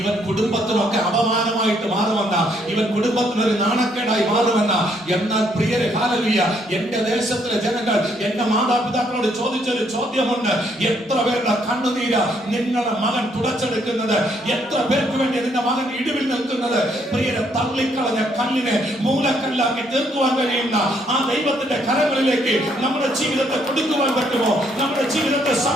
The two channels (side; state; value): both; normal; correlation 0.70